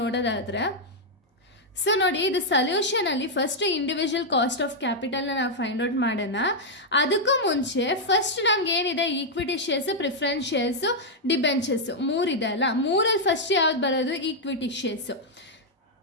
ಸೊ ನೋಡಿ, ಇದು ಸೊಲ್ಯೂಷನಲ್ಲಿ ಫಸ್ಟ್ ಇಂಡಿವಿಜುವಲ್ ಕಾಸ್ಟ್ ಆಫ್ ಕ್ಯಾಪಿಟಲ್ನ ನಾವು ಫೈಂಡ್ ಔಟ್ ಮಾಡೋಣ. ಅದಕ್ಕೂ ಮುಂಚೆ ಫಸ್ಟ್ ನಮ್ಗೆ ಏನಿದೆ, equity shares, preference shares, debentures 3 ಇದೆ ಅಲ್ಲ, 3ರಲ್ಲಿ ಫಸ್ಟ್ ಯಾವ್ದು ಬರೋದು, ಈಕ್ವಿಟಿ ಶೇರ್ಸು.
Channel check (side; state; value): both; normal; correlation -0.03